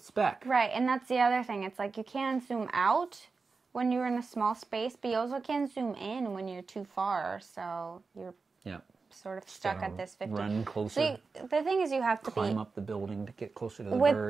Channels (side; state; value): left; quieter; 4.5 dB